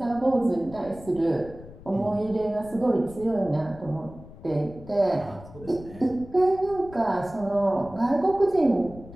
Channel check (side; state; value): left; noise; rumble, 18 dB below the sound